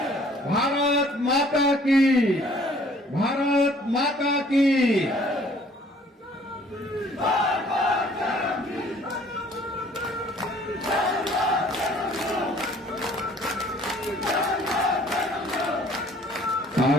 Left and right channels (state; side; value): normal; both; correlation 0.56